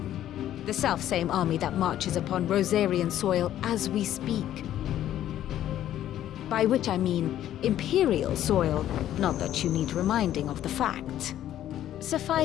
The self-same army that marches upon Rosarian soil as we speak. By which I mean Imperial soil, not that you need reminding of the fact.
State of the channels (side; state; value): right; quieter; 12.0 dB